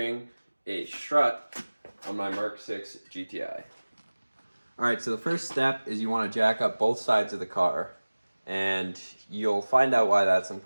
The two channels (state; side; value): inverted; both; correlation -1.00